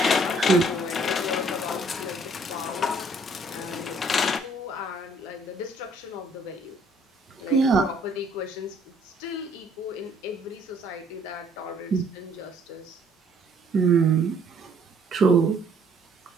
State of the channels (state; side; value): normal; both; correlation 0.61